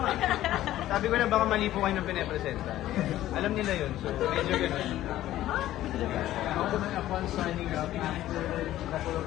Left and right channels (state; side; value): quieter; right; 14.0 dB